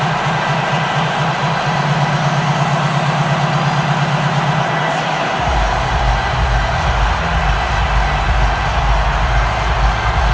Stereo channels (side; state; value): both; identical; correlation 1.00